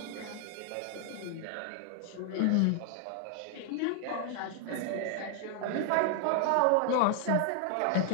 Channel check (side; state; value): both; different; correlation 0.00